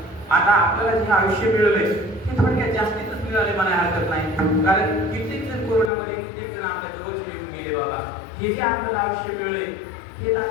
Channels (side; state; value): right; drops out; at 5.9 s